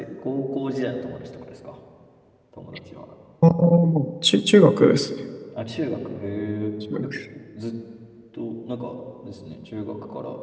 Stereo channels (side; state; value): both; identical; correlation 1.00